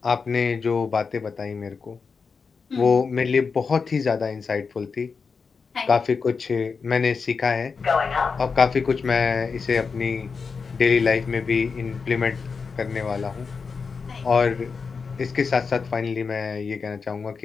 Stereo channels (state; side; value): quieter; right; 5.2 dB